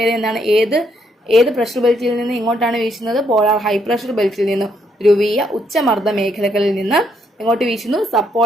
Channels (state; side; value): normal; both; correlation 0.73